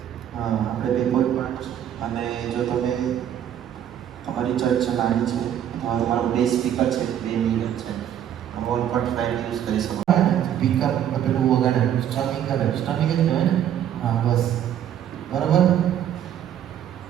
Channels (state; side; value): quieter; left; 10.2 dB